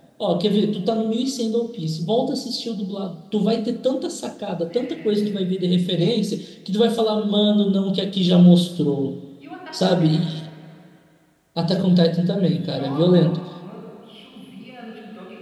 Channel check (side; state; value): both; identical; correlation 1.00